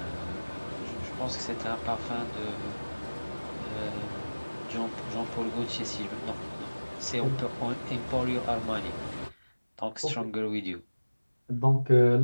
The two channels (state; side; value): inverted; both; correlation -1.00